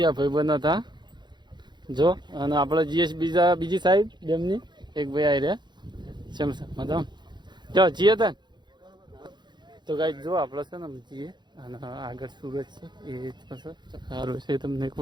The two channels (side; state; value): left; late; 0.21 ms